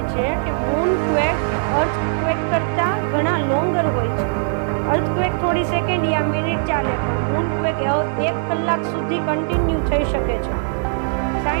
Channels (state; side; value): silent; left; digital silence